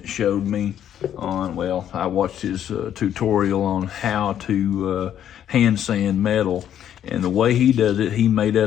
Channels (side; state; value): right; quieter; 10.2 dB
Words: showed me on, well, I watched his tutorial on how to hand sand metal. And the way he does it, he made